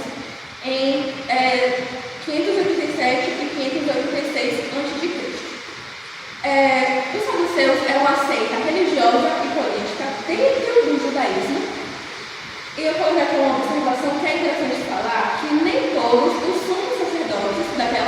em 587 e 586 a.C. Os saduceus eram uma seita religiosa e política dentro do judaísmo. E eu coloquei aqui uma observação que é interessante falar, que nem todos os sumos sacerdotes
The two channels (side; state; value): both; identical; correlation 1.00